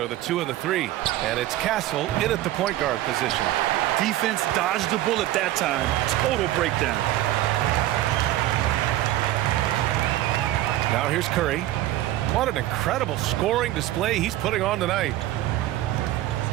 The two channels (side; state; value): left; quieter; 14.7 dB